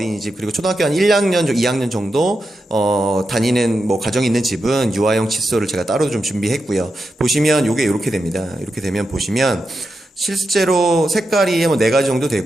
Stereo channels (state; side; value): normal; both; correlation 0.88